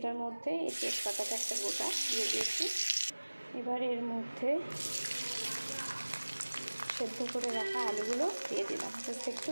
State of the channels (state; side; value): inverted; both; correlation -1.00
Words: মধ্যে এই তেজপাতাটা একটা গোটা দিয়ে দিয়েছি। এবার এর মধ্যে সেদ্ধ করে রাখা আলুগুলো দিয়ে দিলাম, জাস্ট একটু